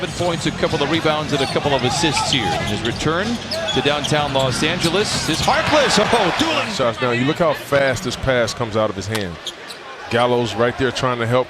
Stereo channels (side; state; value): both; identical; correlation 1.00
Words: points, a couple of rebounds, and a couple of assists here. His return to downtown Los Angeles is Harkless. Oh, dueling shots. Now, you look how fast this pass comes out of his hand. Gallo's right there trying to help,